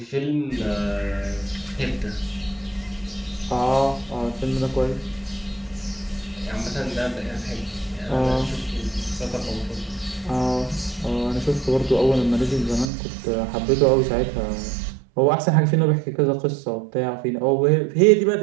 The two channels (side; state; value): left; drops out; at 12.9 s